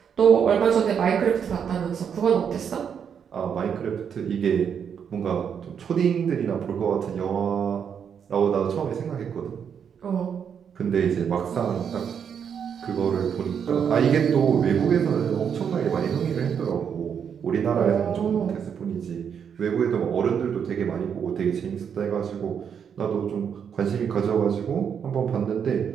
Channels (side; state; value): left; quieter; 7.6 dB